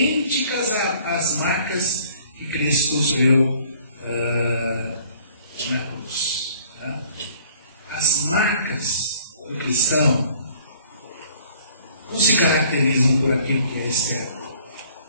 às marcas que Cristo sofreu na cruz. As marcas do cristão não se caracterizam por aquilo que é externo.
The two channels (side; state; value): both; inverted; correlation -0.55